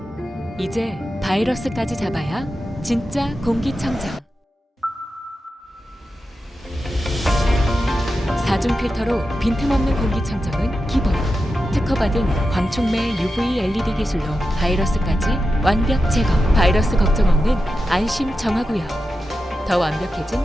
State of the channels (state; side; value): normal; both; correlation 0.90